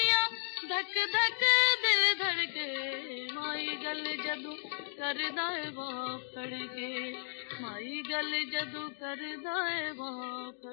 धक धक दिल धड़के, माई गल जदू करदा है बाप फड़ के, माई गल जदू करदा है बाप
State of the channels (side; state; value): right; silent; digital silence